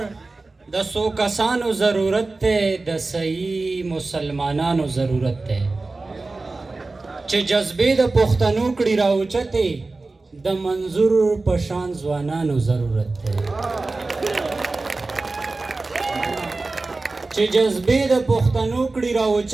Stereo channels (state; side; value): quieter; left; 3.4 dB